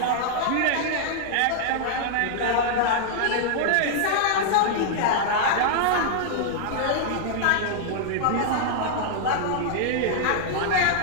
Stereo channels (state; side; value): different; both; correlation -0.01